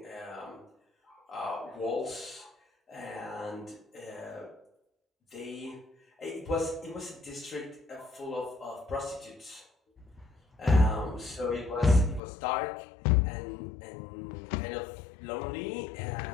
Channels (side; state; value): right; drops out; at 12.2 s